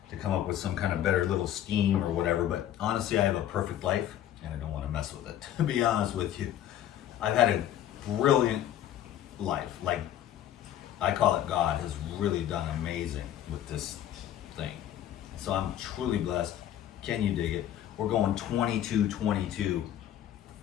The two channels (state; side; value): quieter; right; 11.4 dB